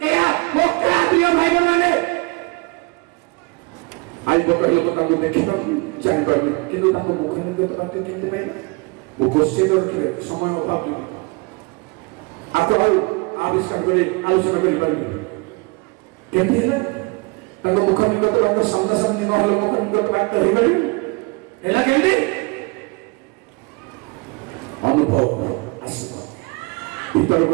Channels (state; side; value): quieter; left; 27.3 dB